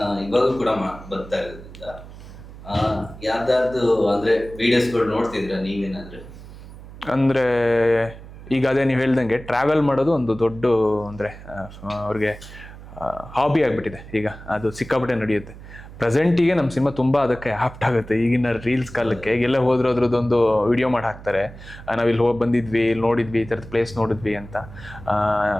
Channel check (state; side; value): noise; right; hum, 16 dB below the sound